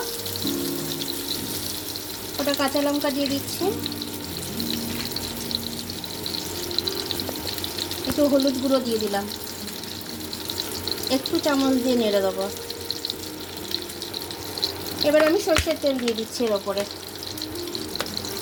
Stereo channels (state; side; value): identical; both; correlation 1.00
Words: ওটা কাঁচা লঙ্কা দিয়ে দিচ্ছি। একটু হলুদ গুঁড়ো দিয়ে দিলাম। একটু চামচ দিয়ে নেড়ে দেবো। এবার আমি সর্ষের তেল দিয়ে দিচ্ছি এর ওপরে।